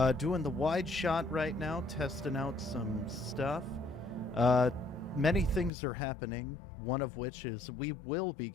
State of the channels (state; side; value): drops out; right; at 5.7 s